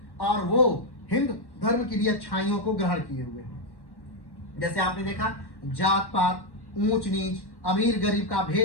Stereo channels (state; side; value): late; right; 1.1 ms